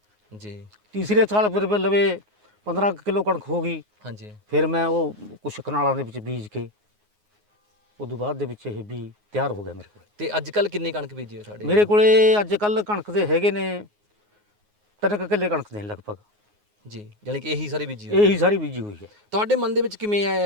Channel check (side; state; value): left; late; 9.5 ms